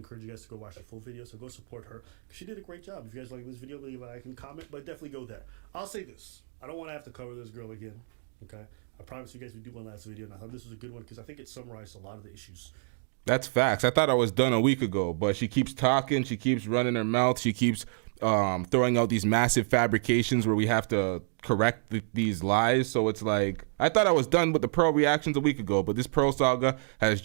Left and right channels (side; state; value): left; silent; 59 dB below the other